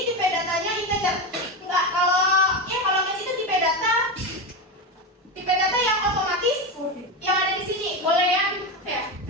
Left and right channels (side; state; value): both; normal; correlation 0.16